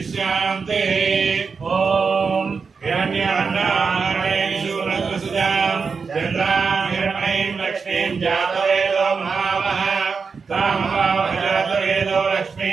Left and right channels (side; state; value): left; quieter; 5.2 dB